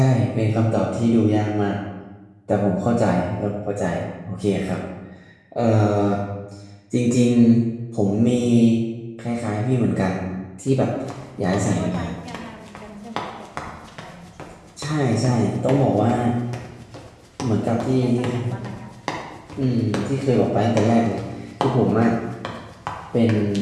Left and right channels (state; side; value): identical; both; correlation 1.00